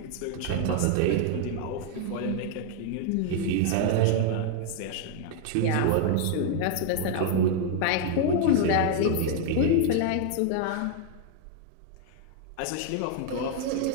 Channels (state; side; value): different; both; correlation 0.00